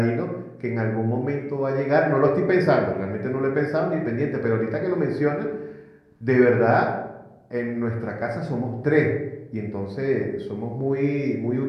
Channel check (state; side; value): identical; both; correlation 1.00